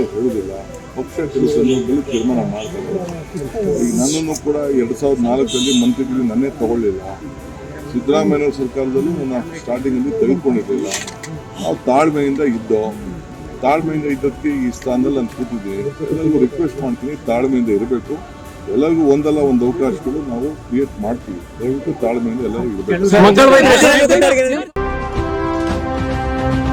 ಹೇಳುವುದಿಲ್ಲ. ಪಕ್ಷ ಕೆಲವು ಸಂದರ್ಭದಲ್ಲಿ ತೀರ್ಮಾನ ಮಾಡ್ತಾರೆ. ಈಗ ನನ್ನನ್ನು ಕೂಡ 2004 ಮಂತ್ರಿಗಳು ನನ್ನೇ ತಗೊಳ್ಳಿಲ್ಲ. ಸಿದ್ದರಾಮಯ್ಯ ಸರ್ಕಾರದಲ್ಲೂ ನನ್ನ ಸ್ಟಾರ್ಟಿಂಗಲ್ಲಿ ತೆಗೆದುಕೊಂಡಿರಲಿಲ್ಲ. ನಾವು ತಾಳ್ಮೆಯಿಂದ ಇದ್ದಕ್ಕೆ ಈ ಸ್ಥಾನದಲ್ಲಿ ನಾನು ಕೂತಿದ್ದೀನಿ. ಎಲ್ಲರಿಗೂ ರಿಕ್ವೆಸ್ಟ್ ಮಾಡ್ತೀನಿ, ತಾಳ್ಮೆಯಿಂದ ಇರಬೇಕು. ಎಲ್ಲರಿಗೂ ಒಂದಲ್ಲ ಒಂದು ಅವಕಾಶಗಳು ನಾವು ಕ್ರಿಯೇಟ್ ಮಾಡ್ತೀವಿ. ದಯವಿಟ್ಟು ತಾಳ್ಮೆಯಿಂದ ಎಲ್ಲರಿಗೂ ಇರಬೇಕು.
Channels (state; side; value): identical; both; correlation 1.00